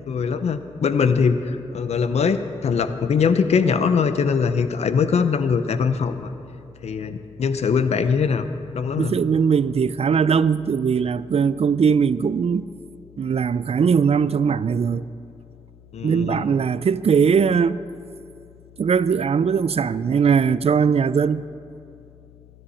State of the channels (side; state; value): left; noise; hum, 25 dB below the sound